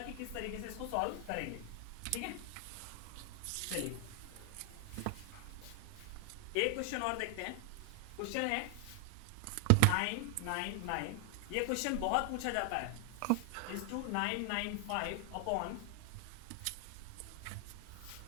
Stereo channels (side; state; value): both; different; correlation 0.00